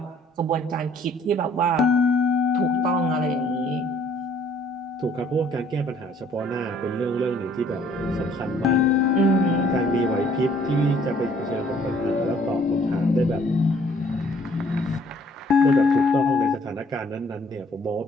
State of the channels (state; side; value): normal; both; correlation 0.60